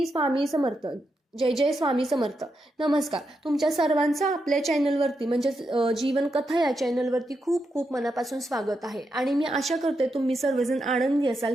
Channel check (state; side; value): normal; both; correlation 0.84